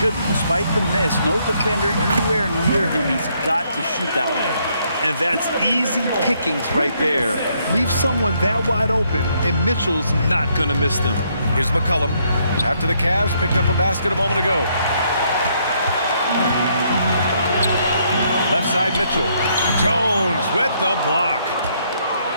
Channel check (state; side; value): inverted; both; correlation -0.71